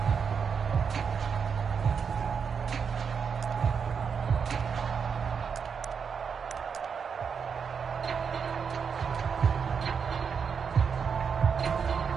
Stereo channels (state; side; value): quieter; left; 6.4 dB